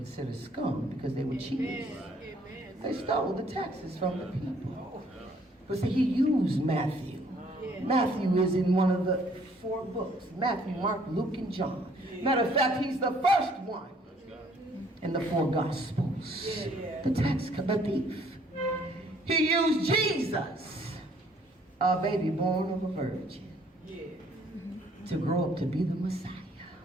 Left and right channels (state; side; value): normal; both; correlation 0.62